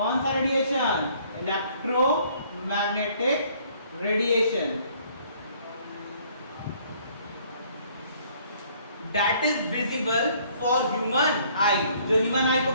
सा radiation? Electromagnetic radiation. That is visible for human आई। जो ह्यूमन आई को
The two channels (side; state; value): both; inverted; correlation -0.61